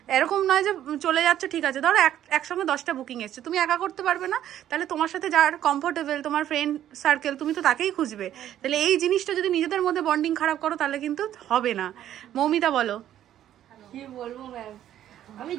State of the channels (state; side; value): quieter; left; 11.5 dB